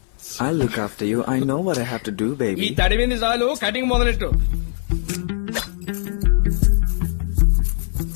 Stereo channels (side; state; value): right; silent; 60 dB below the other